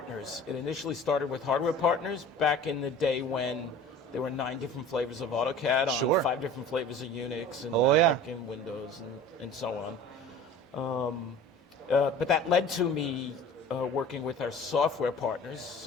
It initially started with hardware partners back in the day when there were 9 different flavors of AutoCAD on 5 different flavors of Unix and Mac and Windows and so on. But that led to me working with our software partners.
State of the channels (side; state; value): both; normal; correlation 0.42